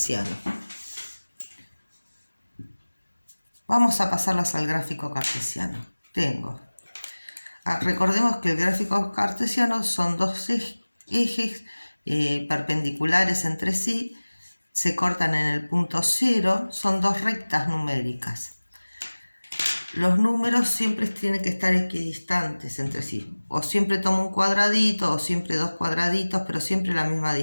Vamos a pasarlas al gráfico cartesiano. Recordemos que el gráfico cartesiano son dos ejes perpendiculares entre sí, se cortan en el punto 0, son dos rectas numéricas. Los números siempre tienen que estar equidistantes entre sí. O siempre tomo un cuadradito, o siempre dos cuadraditos, pero siempre la misma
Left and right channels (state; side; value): inverted; both; correlation -1.00